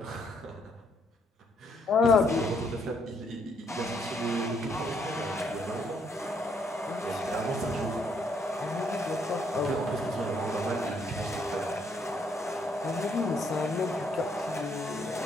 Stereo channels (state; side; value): normal; both; correlation 0.71